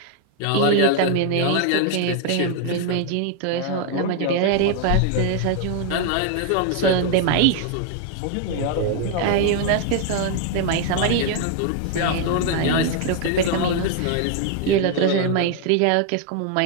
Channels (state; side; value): different; both; correlation 0.00